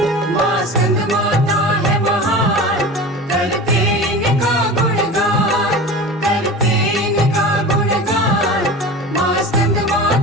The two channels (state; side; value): normal; both; correlation 0.33